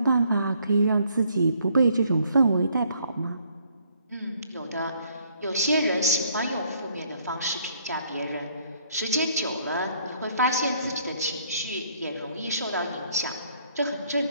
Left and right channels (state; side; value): inverted; both; correlation -0.65